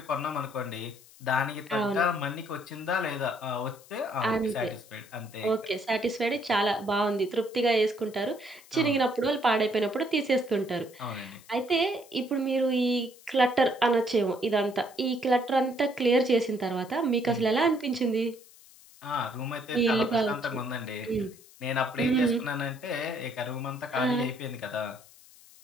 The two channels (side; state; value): left; noise; hiss, 24 dB below the sound